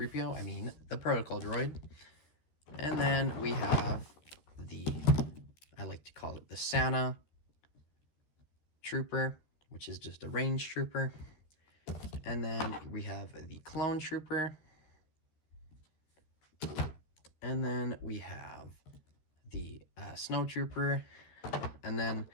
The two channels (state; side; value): late; right; 13 ms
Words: I mean the Protocol Droid. And then we have the, I like to call it the Santa Trooper, which is just a range trooper. And then we have the Clone Trooper. And then we have the Snow Trooper. And then